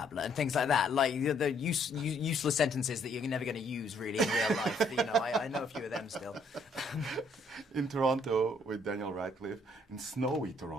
and things like that. Like the useless sentences that you're never going to use really in real life. You know, I know a few of them still. In Toronto with Daniel Radcliffe, in snowy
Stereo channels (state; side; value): normal; both; correlation 0.67